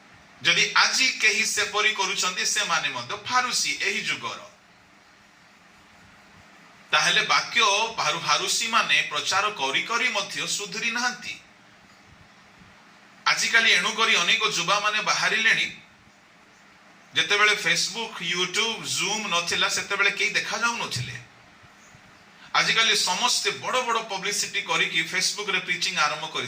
जदि आजि केही से परि करूछंती से माने मध्य फारूसी एही जुगर, ताहले वाक्य फारूसी माने प्रचार करी करी मध्य सुधरी नांती। आजिकाली एणु करी अनेक जुबा माने बाहरी लेनी, जेतेबेले फेसबुक यूट्यूब जूम नथिला सेतेबेले केही देखा जाउ नथिले। आजिकाली समस्त बड़ बड़ पब्लिसिटी करी कि फेसबुक रे प्रीचिंग आरंभ करि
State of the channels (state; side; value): identical; both; correlation 1.00